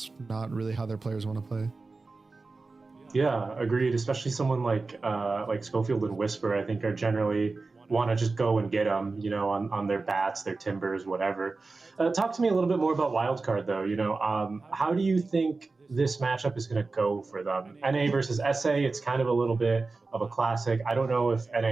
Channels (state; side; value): quieter; left; 3.8 dB